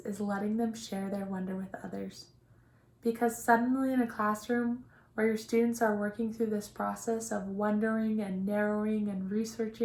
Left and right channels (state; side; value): identical; both; correlation 1.00